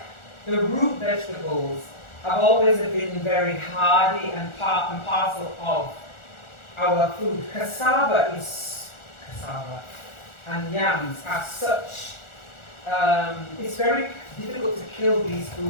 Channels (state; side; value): late; right; 1.4 ms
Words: the root vegetables have always been very hardy and part and parcel of our food. Cassava and yams are such, it's very difficult to kill these